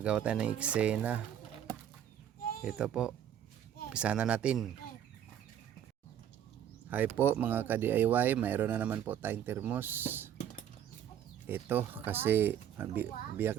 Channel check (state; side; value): quieter; left; 9.9 dB